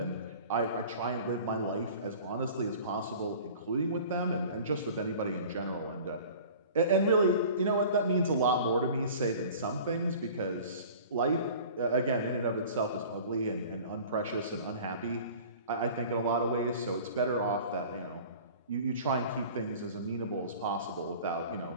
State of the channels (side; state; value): both; inverted; correlation -0.43